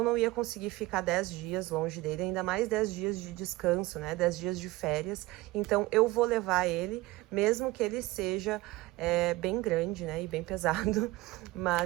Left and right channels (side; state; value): left; quieter; 19.2 dB